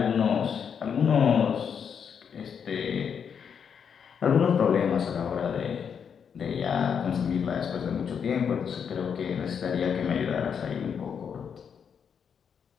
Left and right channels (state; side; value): quieter; right; 7.2 dB